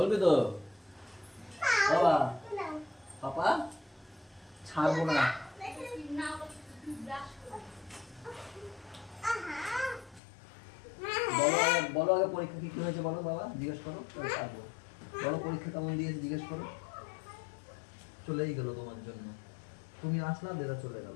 তো বাবা, পাপা ছাড়বো না। বলো আগে পরীক্ষা কি হয়েছে বলো বাবা, জিজ্ঞেস করো। বলো পরীক্ষা কেমন দিয়েছে জিজ্ঞেস করো। চলেই গেল তোমার জন্য, তুমি আসলা দেরা চলে গেল।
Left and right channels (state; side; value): drops out; right; at 10.2 s